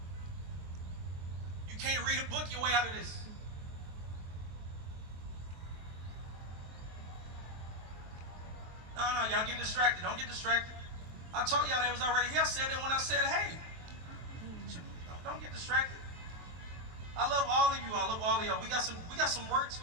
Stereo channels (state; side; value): late; left; 23 ms